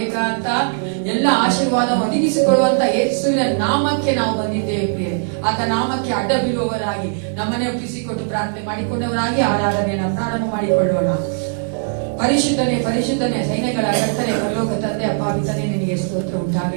ಎಲ್ಲ ಆಶೀರ್ವಾದ ಒದಗಿಸಿಕೊಳ್ಳುವಂತ ಯೇಸುವಿನ ನಾಮಕ್ಕೆ ನಾವು ಬಂದಿದ್ದೇವೆ ಪ್ರಿಯರೇ. ಆತ ನಾಮಕ್ಕೆ ಅಡ್ಡ ಬೀಳುವವರಾಗಿ ನಮ್ಮನ್ನೇ ಒಪ್ಪಿಸಿಕೊಟ್ಟು ಪ್ರಾರ್ಥನೆ ಮಾಡಿಕೊಂಡವರಾಗಿ ಆರಾಧನೆಯನ್ನು ಪ್ರಾರಂಭ ಮಾಡಿಕೊಳ್ಳೋಣ. ಪರಿಶುದ್ಧನೆ ಪರಿಶುದ್ಧನೆ ಸೈನ್ಯಗಳ ಕರ್ತನೆ ಪರಲೋಕ ತಂದೆ ಅಪ್ಪ ಪಿತನೇ, ನಿನಗೆ ಸ್ತೋತ್ರ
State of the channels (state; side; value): silent; left; digital silence